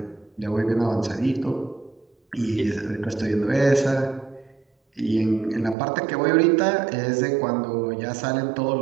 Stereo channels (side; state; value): left; drops out; at 5.8 s